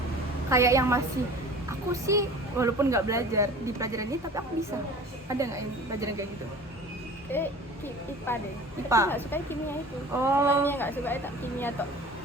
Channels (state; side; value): normal; both; correlation 0.42